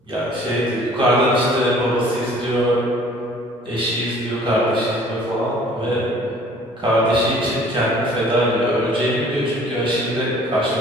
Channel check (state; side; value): normal; both; correlation 0.53